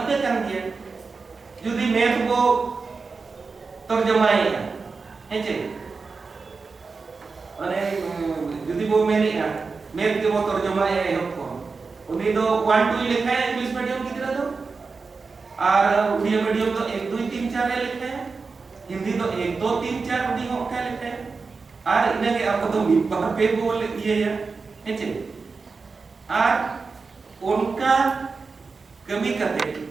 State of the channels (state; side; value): quieter; left; 4.5 dB